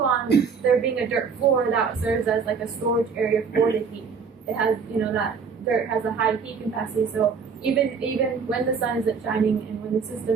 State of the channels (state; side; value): quieter; left; 5.8 dB